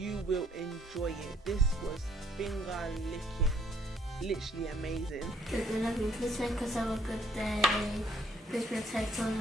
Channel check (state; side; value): normal; both; correlation 0.66